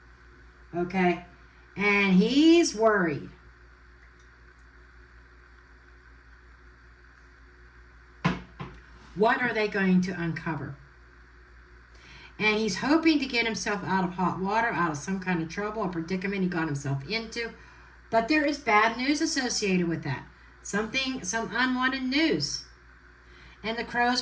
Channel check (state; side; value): identical; both; correlation 1.00